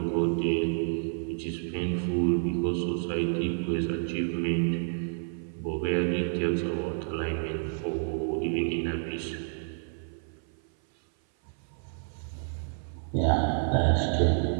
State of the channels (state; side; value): silent; left; 56 dB below the other